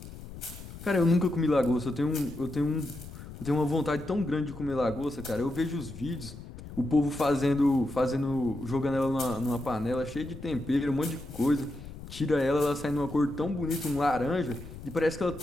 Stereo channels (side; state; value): left; noise; rumble, 13 dB below the sound